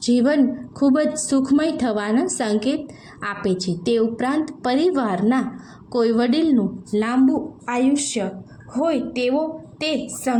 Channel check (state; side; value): identical; both; correlation 1.00